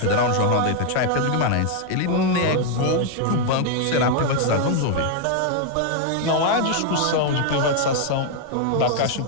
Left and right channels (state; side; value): different; both; correlation 0.00